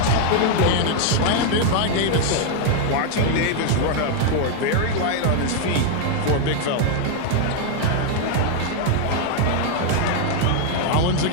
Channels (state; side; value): different; both; correlation 0.00